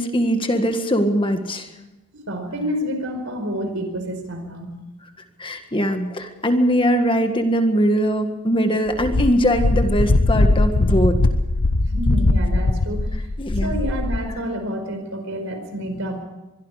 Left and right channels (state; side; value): normal; both; correlation 0.74